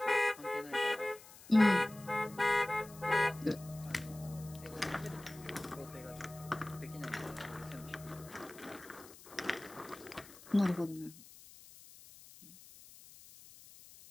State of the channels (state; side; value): noise; left; hiss, 19 dB below the sound